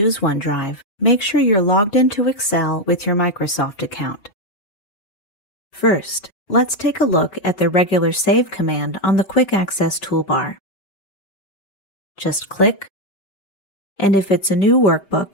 OneDrive, make sure you're logged into Excel with your Microsoft account. First, let's take a look at the regular Save command on the Quick Access toolbar. Just click, and if it's a new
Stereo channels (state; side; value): late; right; 5.2 ms